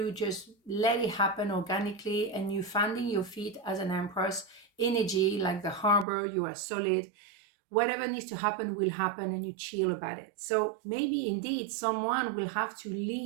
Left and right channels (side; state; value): left; drops out; at 6.1 s